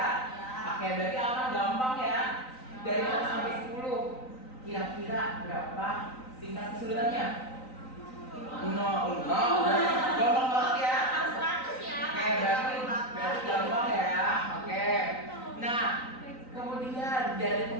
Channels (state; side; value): late; right; 3.9 ms